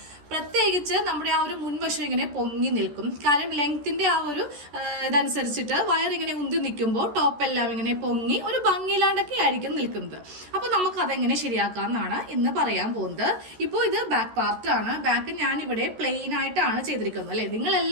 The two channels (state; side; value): late; left; 14 ms